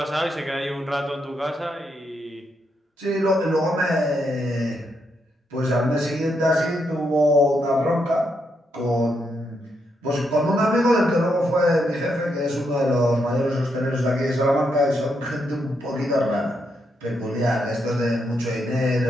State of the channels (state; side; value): normal; both; correlation 0.80